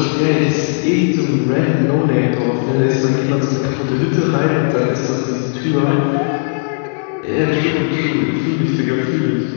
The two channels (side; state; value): right; silent; digital silence